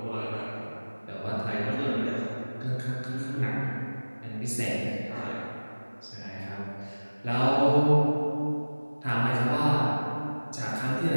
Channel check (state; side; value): inverted; both; correlation -1.00